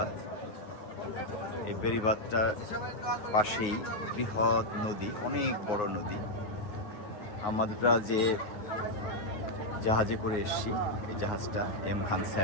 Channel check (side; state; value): right; late; 9.5 ms